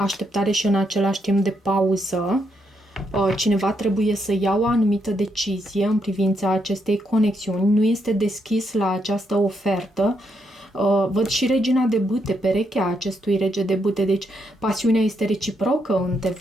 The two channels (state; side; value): normal; both; correlation 0.78